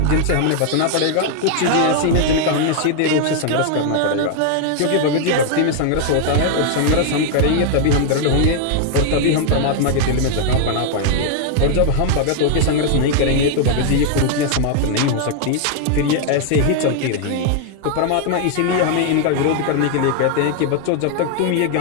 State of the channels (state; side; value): different; both; correlation 0.00